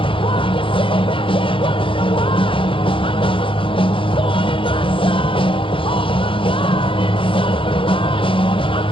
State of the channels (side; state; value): right; late; 0.25 ms